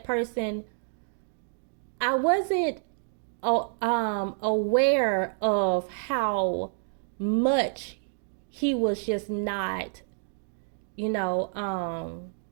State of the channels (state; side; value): silent; left; digital silence